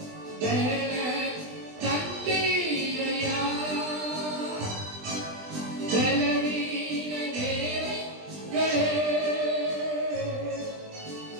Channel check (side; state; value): left; late; 20 ms